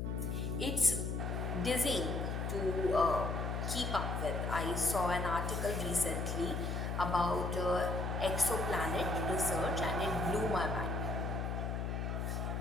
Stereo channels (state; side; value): noise; left; hum, 1 dB below the sound